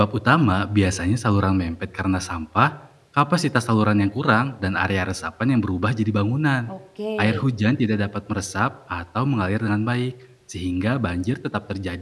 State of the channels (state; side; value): identical; both; correlation 1.00